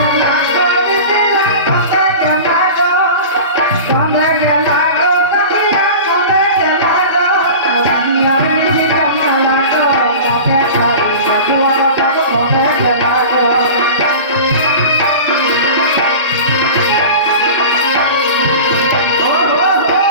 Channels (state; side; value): inverted; both; correlation -0.34